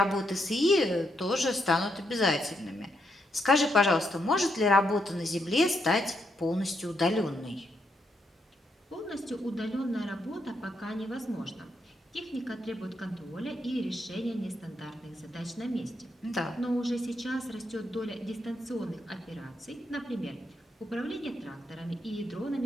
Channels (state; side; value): normal; both; correlation 0.79